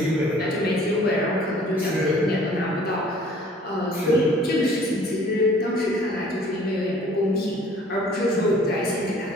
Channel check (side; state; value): both; normal; correlation 0.53